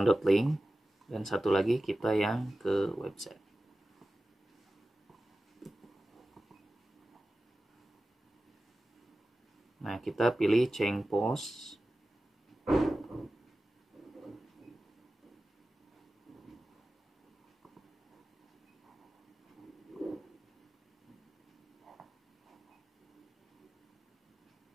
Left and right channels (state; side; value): normal; both; correlation 0.95